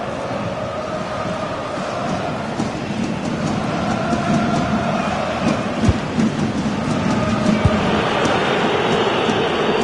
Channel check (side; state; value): both; identical; correlation 1.00